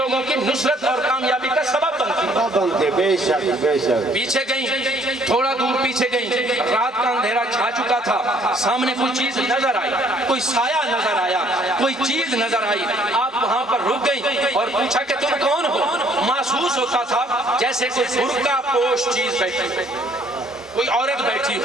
کی نصرت اور کامیابی کا سبب بنتی، بے شک بے شک۔ پیچھے گئیں، تھوڑا دور پیچھے گئیں، رات کا اندھیرا چھا چکا تھا، سامنے کوئی چیز نظر آئی، کوئی سایہ نظر آیا، کوئی چیز نظر آئی، آپ وہاں پر رک گئیں اور پوچھا کہ تم کون ہو؟ محسوس ہوتا تھا جیسے کوئی برقع پوش چیز بیٹھی ہے، کوئی عورت بیٹھی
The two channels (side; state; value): both; normal; correlation 0.61